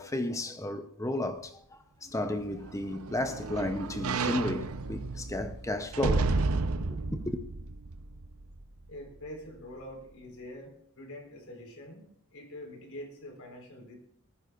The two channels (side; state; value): both; normal; correlation 0.67